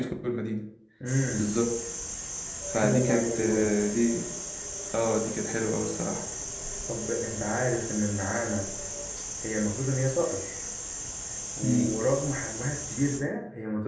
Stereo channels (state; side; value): identical; both; correlation 1.00